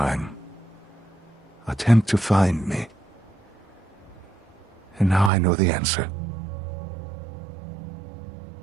attempt to find me? And now I know the answer.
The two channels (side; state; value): left; drops out; at 5.3 s